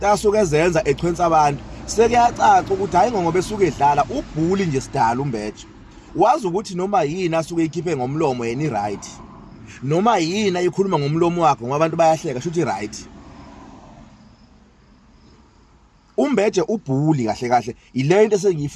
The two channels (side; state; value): both; identical; correlation 1.00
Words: asuke ezenza echwensa abantu. Sekuyacaca ukuthi hayi ngoba esuke edlala ubhuli nje sidala uMbeje. Wazi ukuthi noma yini asuke ikhiphe ngomlomo yena i-right, noma yini ayikhuluma ngomlomo wakhe ngoba abantu bayahleka shuthi i-right. uMbeje ubhuli kahle kahle ile into